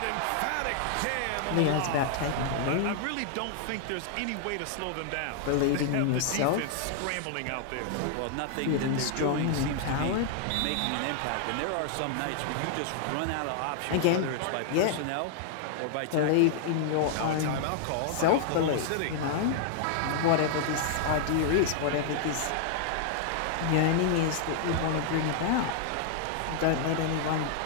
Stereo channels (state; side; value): different; both; correlation -0.01